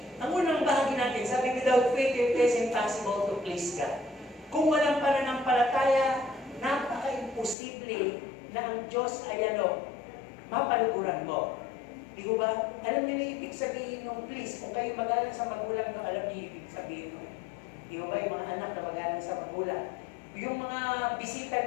Ang unang bahagi natin, sabi, without faith, it is impossible to please God. Kung walang pananampalataya, napaka-imposible na ang Diyos ay mapaluguran mo. Di ko ba? Alam niyo na ibig sabihin nung please, kung kayo magalang sa magulang, alam niyo ibig sabihin nung. Di ko ba yung mga anak na magalang sa magulang? Yung mga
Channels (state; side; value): drops out; right; at 7.6 s